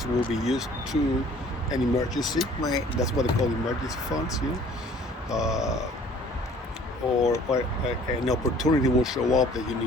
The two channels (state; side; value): normal; both; correlation 0.53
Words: will be used to an emergency. Right. That's what they call emergency funds. Or an opportunity will show up that you